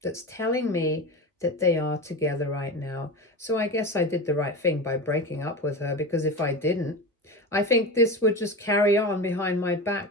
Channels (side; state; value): both; normal; correlation 0.26